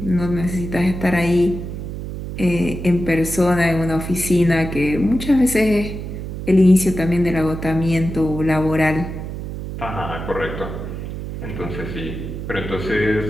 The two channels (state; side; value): noise; right; hum, 7 dB below the sound